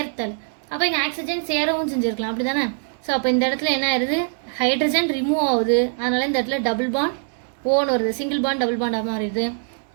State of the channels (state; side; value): silent; left; 59 dB below the other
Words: அப்போ இங்கே ஆக்சிஜன் சேரவும் செஞ்சுருக்கலாம், அப்படி தானே? ஸோ அப்போ இந்த இடத்துல என்ன ஆயிடுது? ஹைட்ரஜன் ரிமூவ் ஆகுது. அதனால் இந்த இடத்துல டபுள் பாண்ட் ஓன்னு வருது. சிங்கிள் பாண்ட் டபுள் பாண்டாக மாறிடுது.